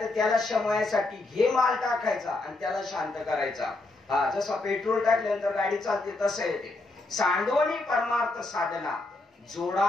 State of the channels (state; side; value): quieter; right; 3.1 dB